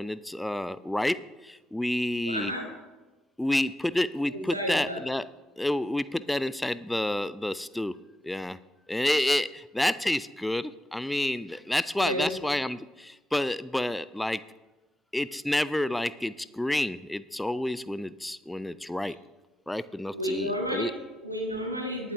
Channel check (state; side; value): normal; both; correlation 0.87